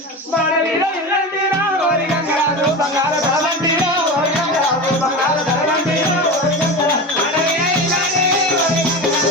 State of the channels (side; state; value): both; normal; correlation 0.25